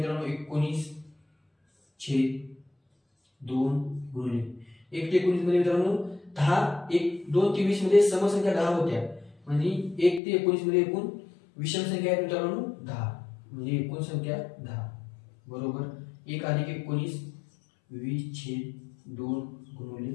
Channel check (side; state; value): right; drops out; at 10.2 s